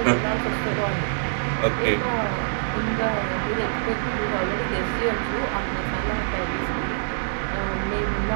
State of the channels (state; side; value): silent; left; digital silence